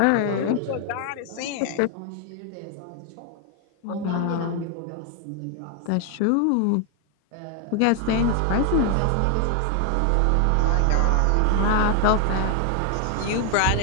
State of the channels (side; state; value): both; different; correlation 0.00